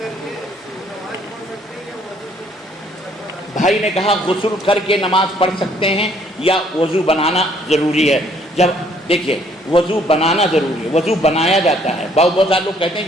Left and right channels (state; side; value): normal; both; correlation 0.63